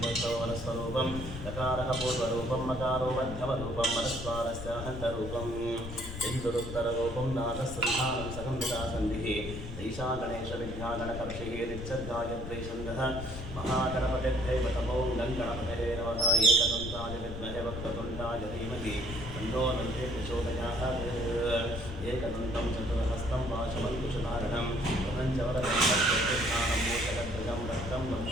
वनस्वरूपं लकारः पूर्वरूपं मकारो मध्यमरूपं मनस्वारस्य हन्तरूपम् इन्दुरुत्तररूपं नादसन्धानं सगम्भिदासन्धिः ईशा गणेशविद्यागणकर्षिः नित्यगायत्री छन्दः महागणपतिर्दैवतमो गणपतये नमः एकदन्ताय विद्महे वक्रतुण्डाय धीमहि तन्नो दन्ते प्रचोदयात् एकदन्तं चतुर्हस्तं पाशमङ्कुशधारणं प्रपञ्चवरदं रक्तस्थानं मोचकध्वजं रक्तं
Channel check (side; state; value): left; noise; rumble, 8 dB below the sound